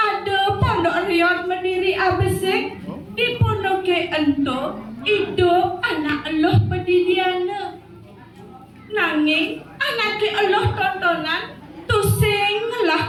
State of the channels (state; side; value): identical; both; correlation 1.00